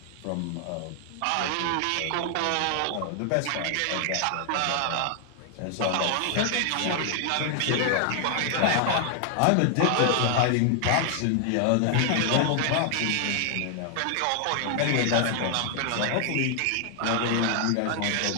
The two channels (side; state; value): both; different; correlation 0.00